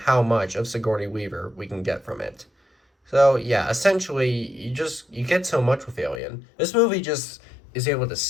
much of Sigourney Weaver we can get from it. So yeah, essentially you get so much with Alien. This movie just is able to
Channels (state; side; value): drops out; right; at 6.2 s